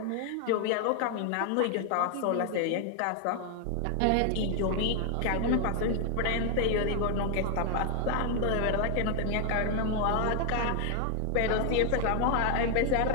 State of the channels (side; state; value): both; different; correlation 0.00